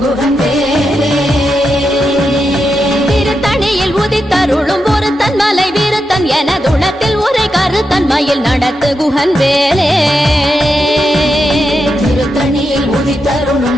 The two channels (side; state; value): both; normal; correlation 0.86